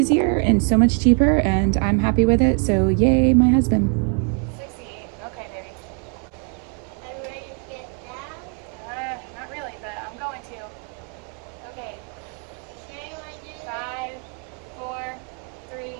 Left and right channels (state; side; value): quieter; left; 39.8 dB